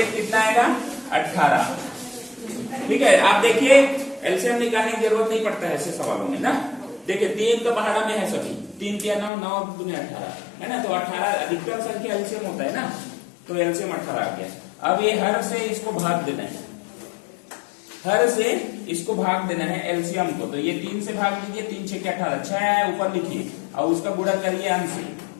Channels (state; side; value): drops out; right; at 9.3 s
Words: कितना आएगा? 18। ठीक है, आप देखिए एलसीएम निकालने की जरूरत नहीं पड़ता है ऐसे सवालों में ना। देखिए 3 तो पहाड़ा में है सभी, 3 3 9 9 दूनी 18 है ना, तो 18 अधिकतम संख्या एलसीएम होता है ना, तो एलसीएम 18 आ गया। अब ये हर से इसको भाग देना है, हर से इसको भाग देना है एलसीएम को, तो ये 3 से भाग दीजिए, 3 6 18, 6 है ऊपर लिखिए और उसका गुणा करिए अंश से,